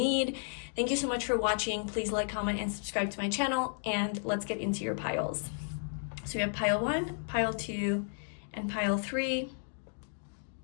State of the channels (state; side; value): silent; right; digital silence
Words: Thank you so much for watching. Please like, comment, and subscribe to my channel, and let's get into your piles. So we have pile 1, pile 2, and pile 3.